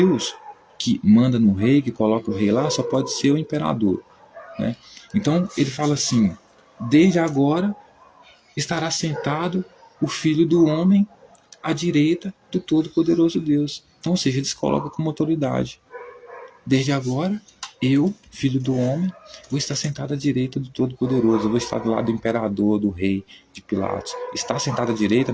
que manda no rei, que coloca o rei lá, só pode ser o imperador, né? Então ele fala assim, desde agora estará sentado o Filho do Homem à direita do Todo-Poderoso Deus. Então, ou seja, eles colocam como autoridade. Desde agora, eu, Filho do Homem, vou estar sentado à direita do Todo-Poderoso. Eu vou estar do lado do imperador, do rei, de Pilatos. Estar sentado à direita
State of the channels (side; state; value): both; identical; correlation 1.00